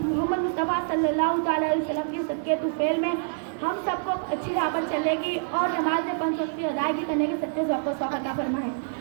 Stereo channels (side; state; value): left; silent; digital silence